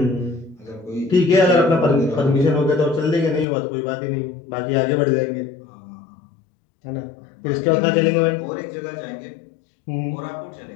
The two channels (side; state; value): right; drops out; at 3.5 s